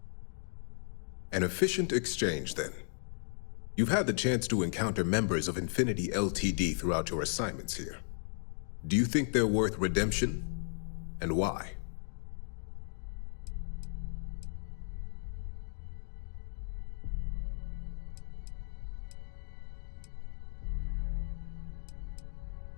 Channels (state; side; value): silent; right; digital silence